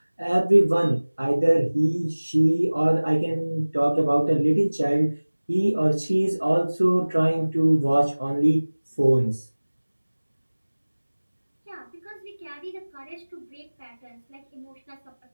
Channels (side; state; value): both; inverted; correlation -1.00